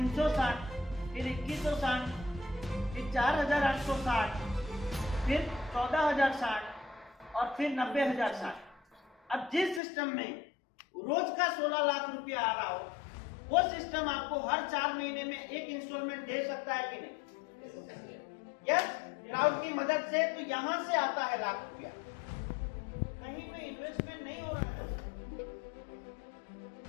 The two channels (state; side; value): drops out; right; at 9.8 s